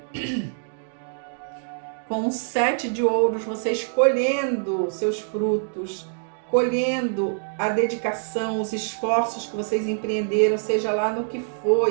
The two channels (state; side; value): silent; left; digital silence